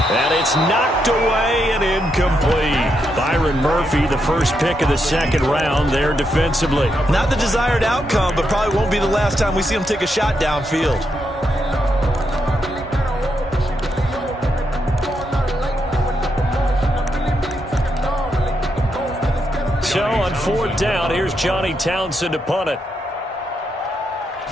And it's knocked away and incomplete. Byron Murphy, the first pick of the 2nd round there defensively. Not the desired outcome, but probably won't be the last time we see him take a shot downfield. So on 4th down, here's Johnny Townsend to punt it.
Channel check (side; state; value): both; normal; correlation 0.81